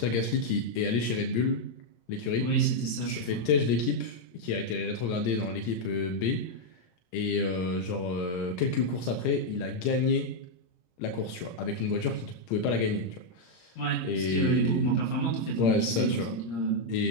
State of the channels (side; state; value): right; late; 17 ms